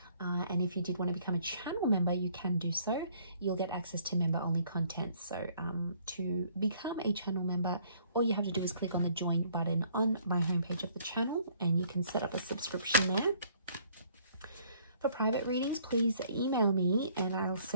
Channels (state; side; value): inverted; both; correlation -0.62